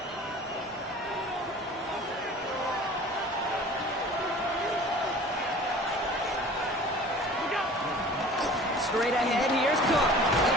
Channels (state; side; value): normal; both; correlation 0.44